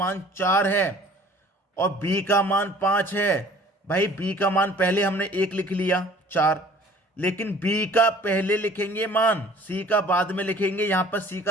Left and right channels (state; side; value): normal; both; correlation 0.50